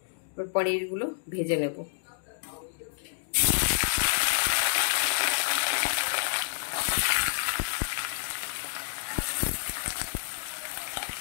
এবার পনিরগুলো ভেজে নেব।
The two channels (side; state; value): right; silent; digital silence